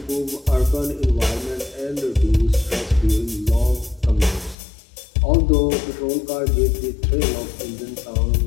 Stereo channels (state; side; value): drops out; right; at 4.5 s